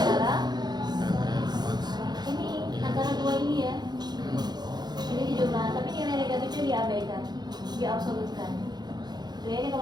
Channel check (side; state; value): left; late; 0.20 ms